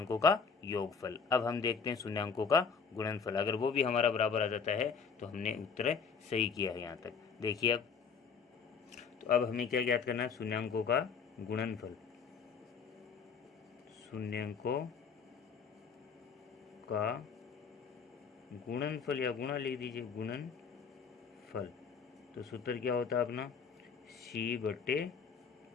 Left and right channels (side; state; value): right; quieter; 5.8 dB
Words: का योगफल। अब हम देखते हैं शून्यांकों का गुणनफल। अगर वो भी हमारा बराबर आ जाता है तो हमने उत्तर सही किया है यहाँ तक। देखिए अब, तो अब हमें क्या ज्ञात करना है, शून्यांकों का गुणनफल। शून्यांकों का गुणनफल या गुणा लिख दीजिए, गुणनफल। तो सूत्र क्या होता है अपना, C/A,